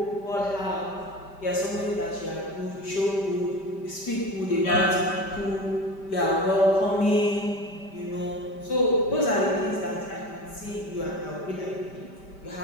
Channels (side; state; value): right; late; 5.1 ms